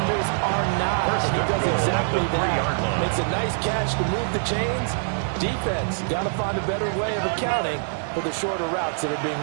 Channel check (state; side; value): silent; left; digital silence